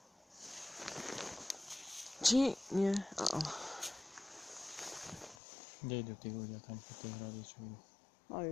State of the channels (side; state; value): right; drops out; at 5.4 s